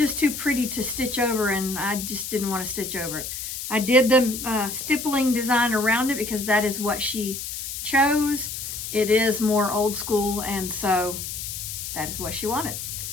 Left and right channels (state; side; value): noise; left; hiss, 6 dB below the sound